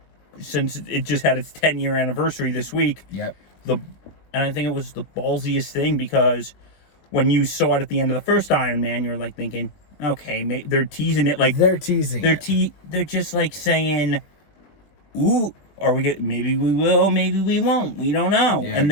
since it just had its 10-year anniversary this week. Yep. And I think it was the ballsiest thing, because when you saw it at the end of the first Iron Man, you're like thinking, okay, they're teasing it, like They're teasing it. They're just like saying, ooh, are we get? Maybe we will, maybe we won't. We don't know. Yeah,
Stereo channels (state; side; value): late; right; 20 ms